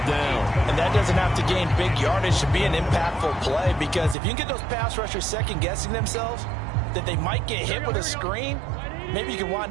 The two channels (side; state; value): left; drops out; at 4.2 s